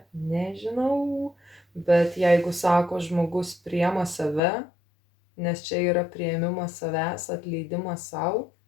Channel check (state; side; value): drops out; right; at 4.4 s